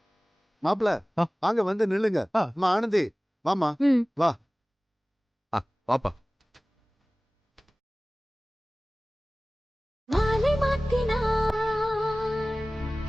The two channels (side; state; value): both; normal; correlation 0.98